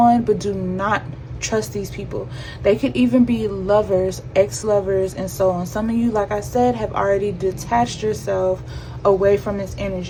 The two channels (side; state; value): both; identical; correlation 1.00